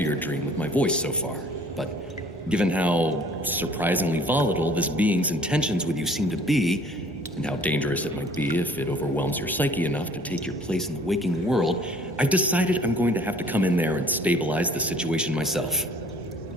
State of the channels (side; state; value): both; normal; correlation 0.53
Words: your dream with my voice so far, but given how surprisingly volatile this being's intentions with you seem to be, and how dangerous it might be if it overwhelms your psyche enough to take your place in the waking world, I've decided I'm going to have to come in there and stabilize the situation myself.